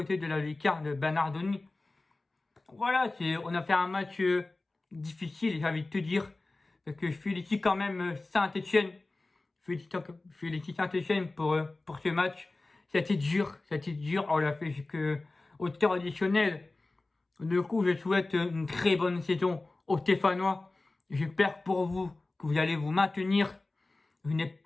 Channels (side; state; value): right; quieter; 3.2 dB